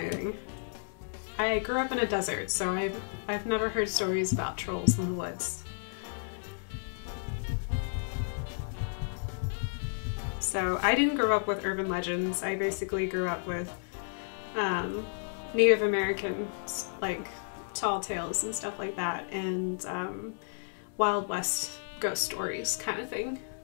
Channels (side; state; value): right; silent; digital silence